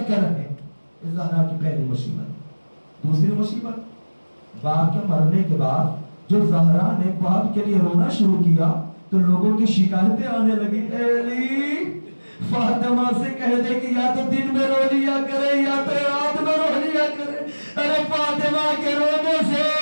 کر رہے ہیں۔ یہ زہرا کی پہلی مصیبت۔ دوسری مصیبت، باپ کے مرنے کے بعد جو زہرا نے باپ کے لیے رونا شروع کیا تو لوگوں کی شکایتیں آنے لگی، اے علی فاطمہ سے کہہ دے کہ یا تو دن میں رو لیا کرے یا تو رات میں رو لیا کرے۔ ارے فاطمہ کے رونے سے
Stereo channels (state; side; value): inverted; both; correlation -1.00